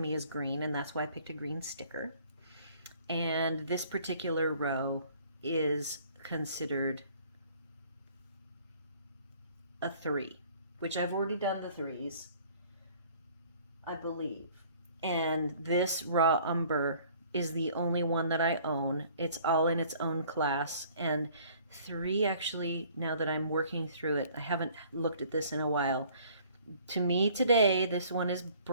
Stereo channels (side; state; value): both; inverted; correlation -0.55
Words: is green, and that's why I picked a green sticker. And this particular row is considered a 3, which I've already done the 3s, I believe. And this raw umber is the only one that I own. It's all in its own class. And 3, actually, now that I'm working through it, I haven't looked at this in a while. To me today, this one is